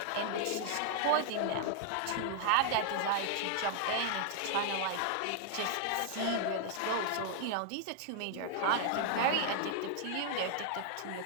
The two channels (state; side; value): different; both; correlation 0.00